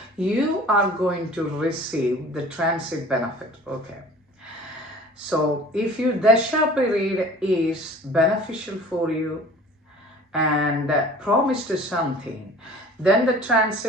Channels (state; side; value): normal; both; correlation 0.46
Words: you are going to receive the transit benefit. Okay. So if your dasha period is beneficial for you and promised something, then the